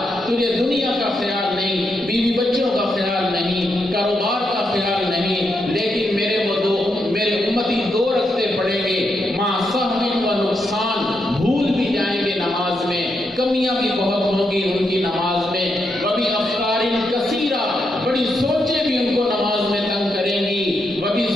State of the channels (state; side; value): normal; both; correlation 0.82